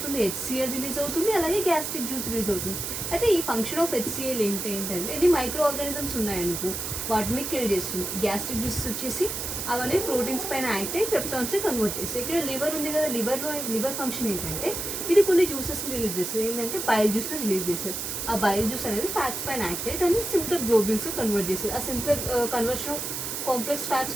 HCl రిలీజ్ అవుతుంది, అలాగే గ్యాస్ట్రిక్ జ్యూస్ రిలీజ్ అవుతుంది. అయితే ఈ ఫంక్షన్ ఆఫ్ HCl ఏంటంటే ఎన్ని మైక్రో ఆర్గానిజమ్స్ ఉన్నాయనుకో వాటిని కిల్ చేస్తుంది. గ్యాస్ట్రిక్ జ్యూస్ వచ్చేసి అవన్నీ ప్రోటీన్స్ పైన యాక్ట్ అయ్యి పెప్టాన్స్ని కన్వర్ట్ చేస్తాయి. ఇక్కడ లివర్ ఉంది కదా, లివర్ ఫంక్షన్ ఏంటంటే ఇది కొన్ని జ్యూసెస్ని రిలీజ్ చేస్తుంది. ఏంటంటే బైల్ జ్యూస్ని రిలీజ్ చేస్తుంది. ఆ బైల్ జ్యూస్ అనేది ఫ్యాట్స్ పైన యాక్ట్ అయ్యి దాన్ని సింప్లర్ గ్లోబ్యూల్స్ కన్వర్ట్ చేస్తుంది. ఆ simpler conversion of complex fats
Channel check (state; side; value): noise; right; hiss, 4 dB below the sound